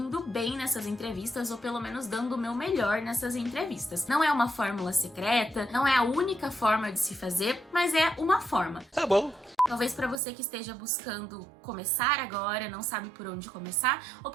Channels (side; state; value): left; drops out; at 10.2 s